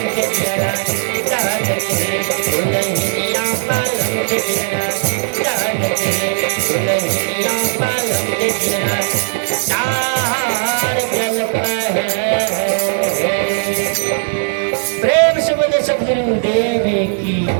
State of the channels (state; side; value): silent; left; digital silence